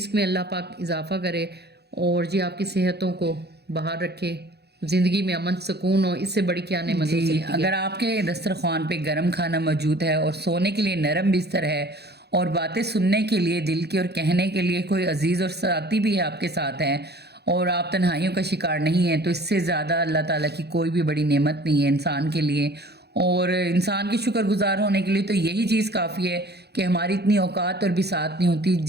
में अल्लाह पाक इजाफा करे और जी आपकी सेहतों को बाहर रखे, जिंदगी में अमन सुकून हो, इससे बड़ी क्या नेमत हो सकती है। अगर आपके दस्तरखान पे गरम खाना मौजूद है और सोने के लिए नरम बिस्तर है और बातें सुनने के लिए दिल की और कहने के लिए कोई अजीज और साथी भी है आपके साथ हैं, और आप तन्हाइयों का शिकार नहीं है, तो इससे ज़्यादा अल्लाह ताला की कोई भी बड़ी नेमत नहीं है इंसान के लिए। और इंसान की शुक्रगुजार होने के लिए तो यही चीज़ काफ़ी है कि हमारी इतनी औकात और बिसात नहीं होती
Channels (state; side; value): late; left; 0.48 ms